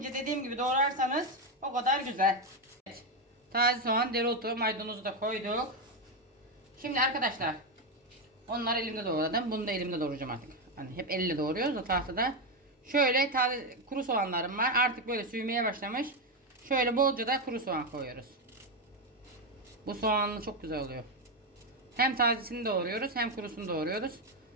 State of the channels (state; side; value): normal; both; correlation 0.07